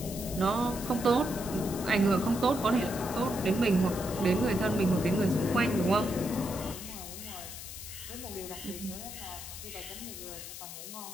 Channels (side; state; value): left; noise; hiss, 10 dB below the sound